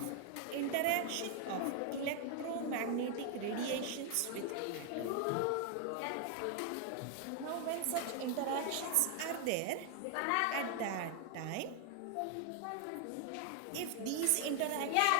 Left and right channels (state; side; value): different; both; correlation 0.00